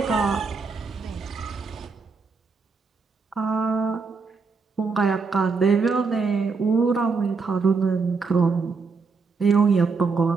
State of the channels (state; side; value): quieter; left; 4.7 dB